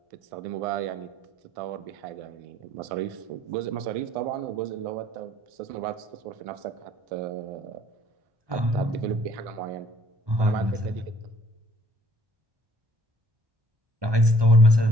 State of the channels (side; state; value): left; late; 1.2 ms